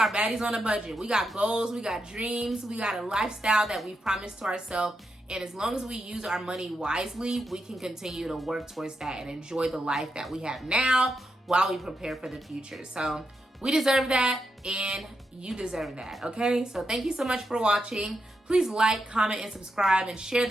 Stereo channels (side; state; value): both; normal; correlation 0.85